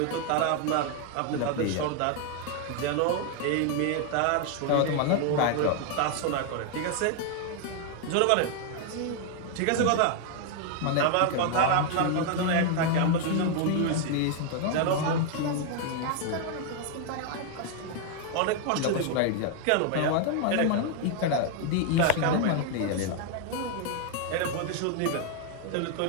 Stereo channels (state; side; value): different; both; correlation 0.00